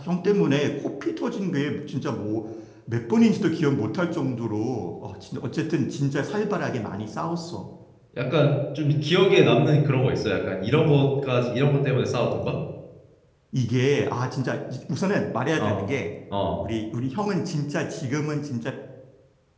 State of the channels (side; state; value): both; identical; correlation 1.00